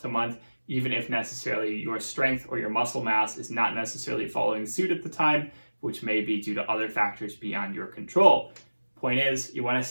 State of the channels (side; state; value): both; inverted; correlation -1.00